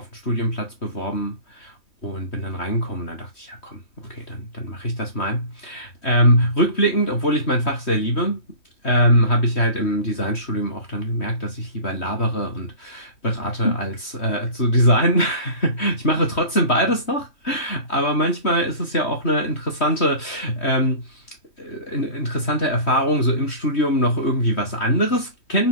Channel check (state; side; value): late; right; 3.1 ms